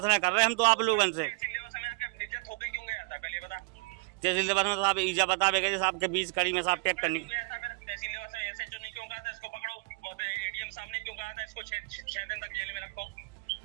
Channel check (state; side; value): quieter; left; 31.9 dB